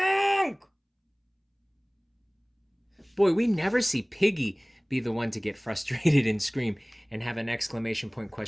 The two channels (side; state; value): both; identical; correlation 1.00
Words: Boy, we never see Piggy be the one to get frustrated and scream and have an exclamation point,